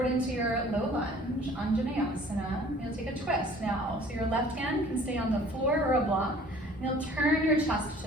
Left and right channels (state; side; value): normal; both; correlation 0.51